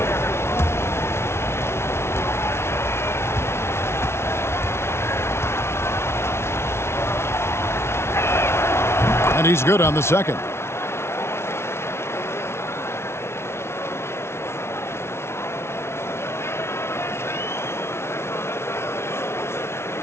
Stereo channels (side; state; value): right; late; 0.12 ms